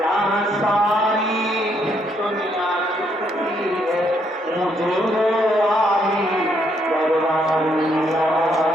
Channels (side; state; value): both; normal; correlation 0.73